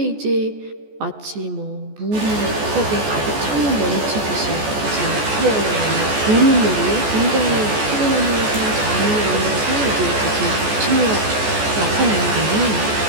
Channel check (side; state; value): left; late; 14 ms